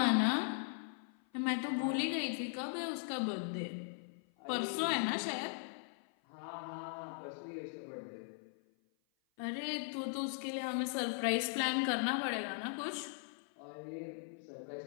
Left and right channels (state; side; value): silent; right; 52 dB below the other